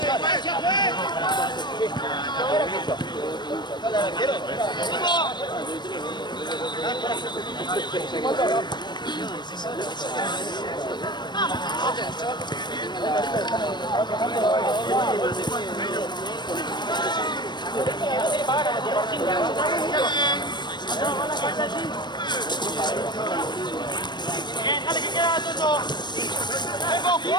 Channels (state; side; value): late; right; 0.22 ms